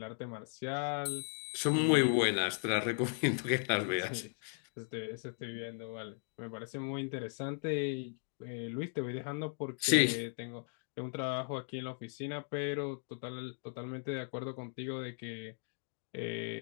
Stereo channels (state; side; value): silent; right; 53 dB below the other